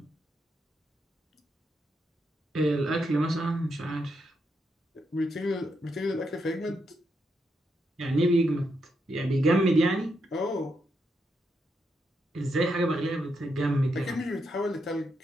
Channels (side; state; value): both; normal; correlation 0.81